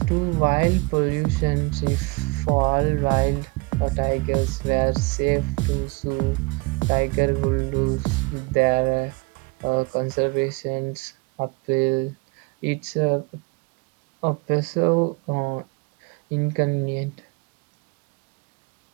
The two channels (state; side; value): quieter; left; 27.4 dB